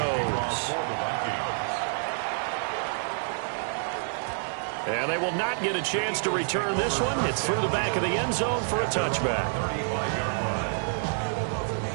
And they will not get a chance to return this one. It's through the back of the end zone for a touchback.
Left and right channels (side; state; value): left; silent; 59 dB below the other